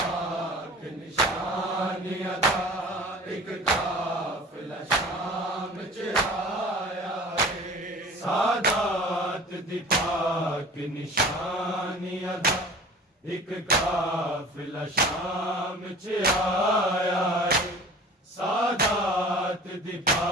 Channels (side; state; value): both; normal; correlation 0.42